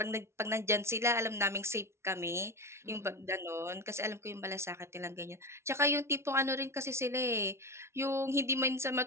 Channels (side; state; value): left; late; 0.13 ms